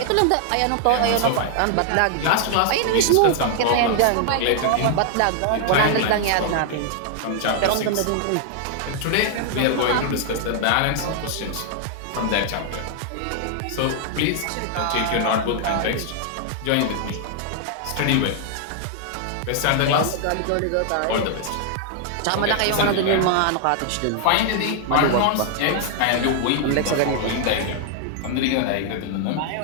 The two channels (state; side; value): different; both; correlation 0.00